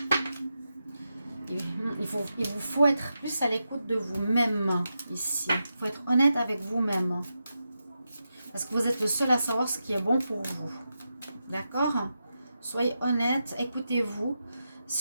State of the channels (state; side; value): inverted; both; correlation -0.88